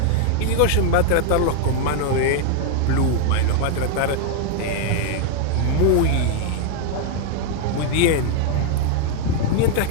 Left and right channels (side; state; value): both; different; correlation 0.00